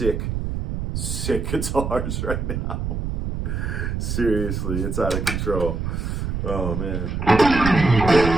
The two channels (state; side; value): noise; right; rumble, 3 dB below the sound